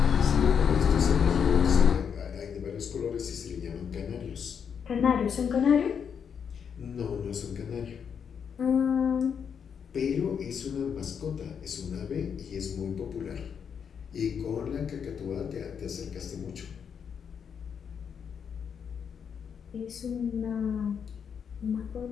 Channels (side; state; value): right; quieter; 7.2 dB